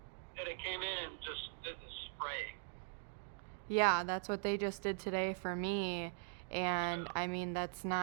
Yeah, they came in and just did the spray. Yeah, that's what they just did today for me. And Yeah. I mean, that's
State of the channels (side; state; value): left; silent; 50 dB below the other